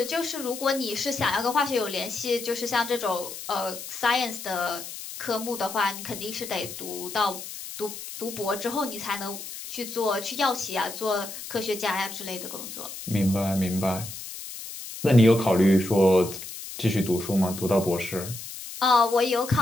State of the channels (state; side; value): noise; left; hiss, 10 dB below the sound